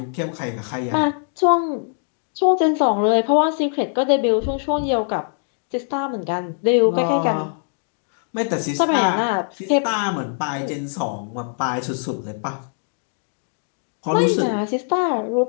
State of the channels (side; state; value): right; silent; digital silence